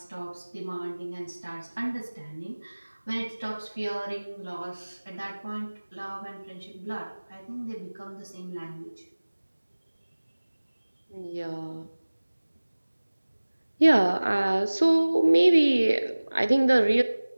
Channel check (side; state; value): both; inverted; correlation -1.00